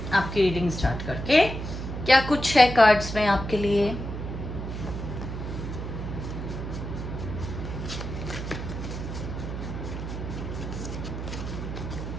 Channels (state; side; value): noise; right; hum, 6 dB below the sound